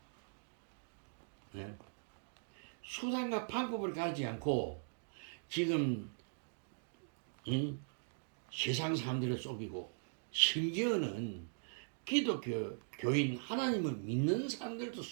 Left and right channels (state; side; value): silent; left; digital silence